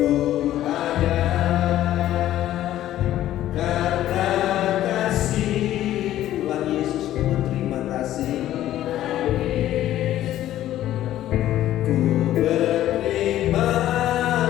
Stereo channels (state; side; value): quieter; right; 13.2 dB